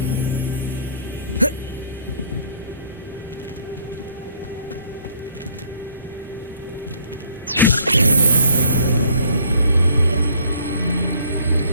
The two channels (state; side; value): inverted; both; correlation -0.60